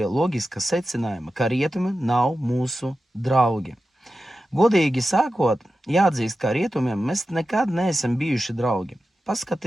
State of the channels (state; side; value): normal; both; correlation 0.92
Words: loģiska secinājuma, ka rietumi nav mūsu draugi. Godīgi sākot, jāatzīst, ka rietumiem mēs nekad neesam bijuši draugi.